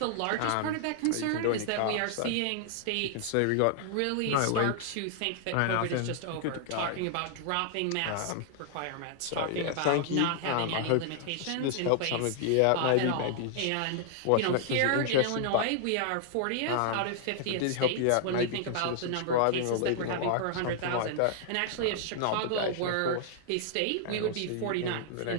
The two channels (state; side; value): different; both; correlation 0.00